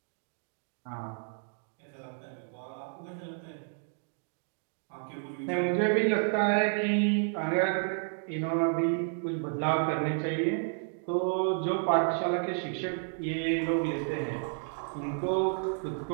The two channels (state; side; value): silent; left; 57 dB below the other